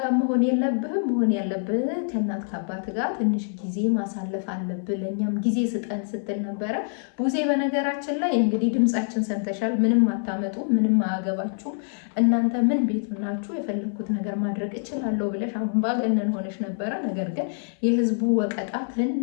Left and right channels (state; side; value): silent; right; 60 dB below the other